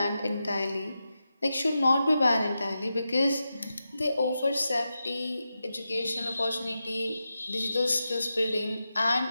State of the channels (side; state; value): both; inverted; correlation -0.90